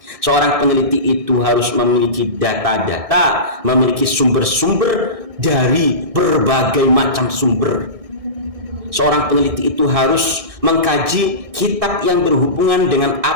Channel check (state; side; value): late; left; 1.6 ms